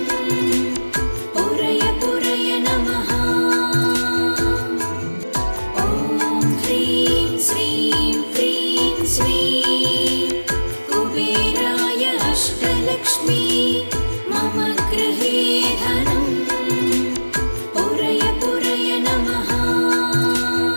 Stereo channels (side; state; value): both; inverted; correlation -1.00